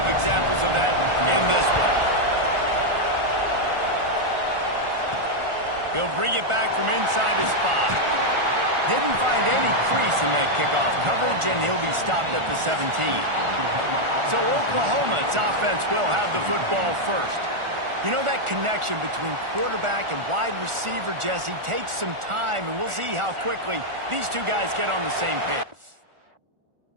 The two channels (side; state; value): left; late; 1.4 ms